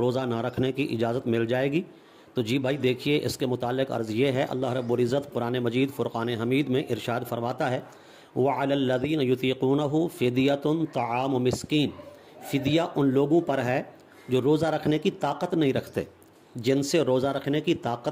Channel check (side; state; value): both; identical; correlation 1.00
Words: نہ رکھنے کی اجازت مل جائے گی؟ تو جی بھائی دیکھیے، اس کے متعلق عرض یہ ہے، اللہ رب العزت قرآن مجید فرقان حمید میں ارشاد فرماتا ہے وَعَلَى الَّذِينَ يُطِيقُونَهُ فِدْيَةٌ طَعَامُ مِسْكِينٍ، فدیہ ان لوگوں پر ہے جو روزہ رکھنے کی طاقت نہیں رکھتے، جن سے روزہ رکھنے کی